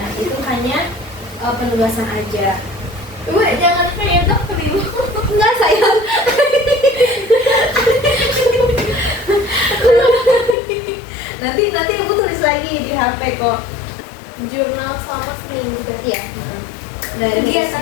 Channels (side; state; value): right; drops out; at 10.6 s